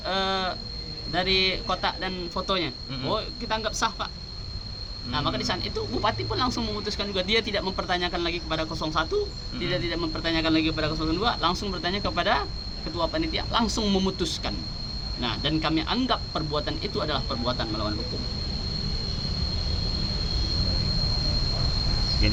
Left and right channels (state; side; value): identical; both; correlation 1.00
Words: dari kotak dan fotonya. Oh, kita anggap sah, Pak. Nah, maka di saat itu Bupati pun langsung memutuskan juga, dia tidak mempertanyakan lagi kepada 01, tidak mempertanyakan lagi kepada 02, langsung bertanya kepada ketua panitia, langsung memutuskan. Nah, dan kami anggap perbuatan itu adalah perbuatan melawan hukum.